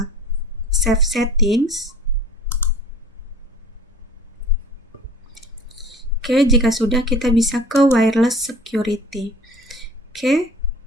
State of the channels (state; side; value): normal; both; correlation 0.45